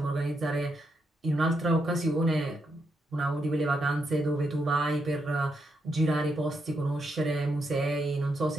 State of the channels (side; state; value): both; normal; correlation 0.81